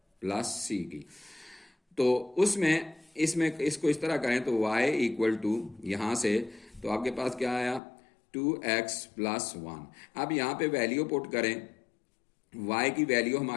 + c की। तो उसमें इसमें इसको इस तरह करें तो y = यहाँ से तो आपके पास क्या आया 2x + 1। अब यहाँ पे वैल्यू पुट करें, y की वैल्यू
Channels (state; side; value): drops out; right; at 7.8 s